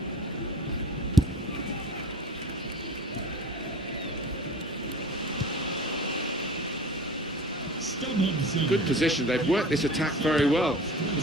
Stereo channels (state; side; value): normal; both; correlation 0.41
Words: Good position. They've worked this attack very well